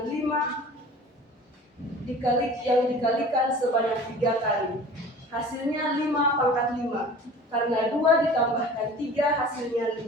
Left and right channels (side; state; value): both; normal; correlation 0.43